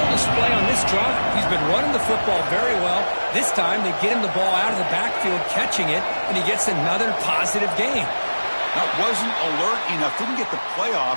display on this drive. He's been running the football very well. This time, they get him the ball out of the backfield, catching it, and he gets another positive gain. That wasn't alert enough. Didn't get the play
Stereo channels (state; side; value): inverted; both; correlation -1.00